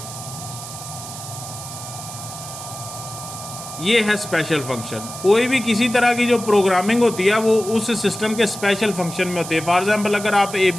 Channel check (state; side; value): noise; right; hiss, 11 dB below the sound